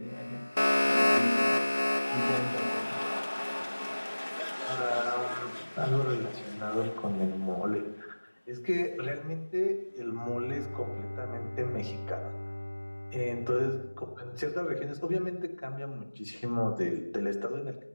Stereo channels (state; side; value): inverted; both; correlation -1.00